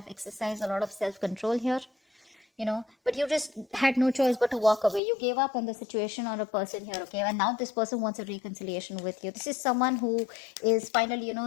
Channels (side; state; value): right; drops out; at 5.0 s